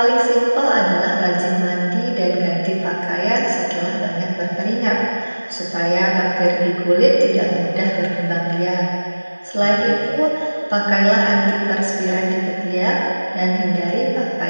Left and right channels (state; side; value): inverted; both; correlation -1.00